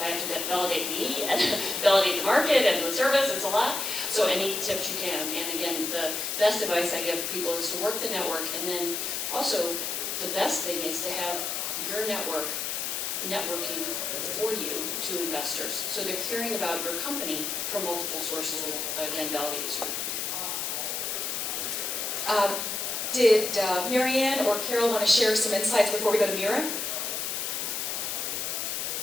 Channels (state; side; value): noise; left; hiss, 2 dB below the sound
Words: I have to validate me and validate the market and the service, it's a lot. So any tips you can. And again, the best advice I give people is to work the network, and then also the best thing is to have your networking for you to investors. So they're hearing about your company from multiple sources, which again validates you. Did Marianne or Carol want to share some insights before we go to Mira?